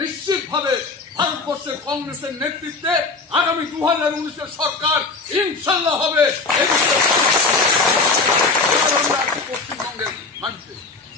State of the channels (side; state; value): right; quieter; 3.9 dB